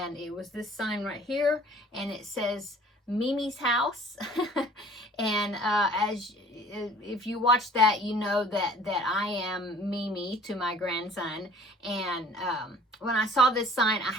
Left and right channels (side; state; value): both; normal; correlation 0.51